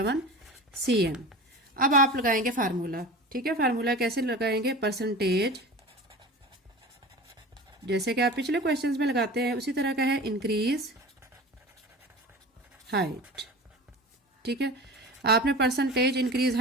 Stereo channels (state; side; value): normal; both; correlation 0.34